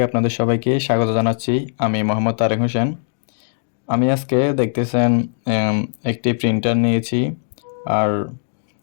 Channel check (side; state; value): right; silent; digital silence